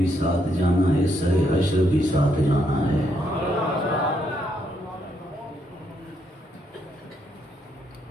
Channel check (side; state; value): both; normal; correlation 0.75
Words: ساتھ جانا ہے، سر حشر بھی ساتھ جانا ہے۔